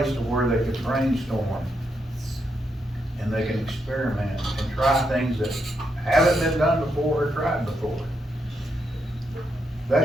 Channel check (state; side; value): normal; both; correlation 0.81